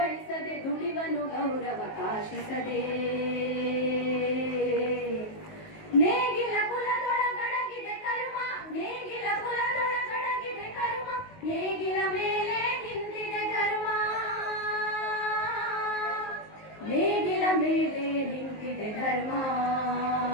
ದುಡಿವನು ಗೌರವ ಕಾಶಿಸದೆ. ನೇಗಿಲ ಕುಲದೊಳಗಡಗಿದೆ ಕರ್ಮ, ನೇಗಿಲ ಕುಲದೊಳಗಡಗಿದೆ ಕರ್ಮ, ನೇಗಿಲ ಮೇಲೆ ನಿಂತಿದೆ ಧರ್ಮ, ನೇಗಿಲ ಮೇಲೆ ನಿಂತಿದೆ ಧರ್ಮ.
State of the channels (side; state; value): right; late; 19 ms